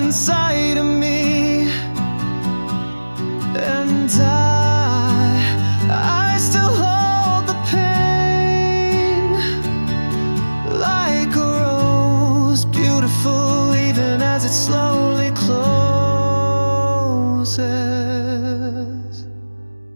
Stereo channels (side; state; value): both; inverted; correlation -1.00